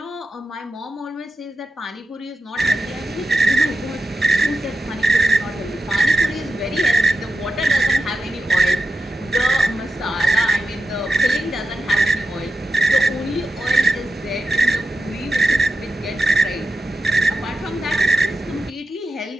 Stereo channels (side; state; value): both; normal; correlation 0.89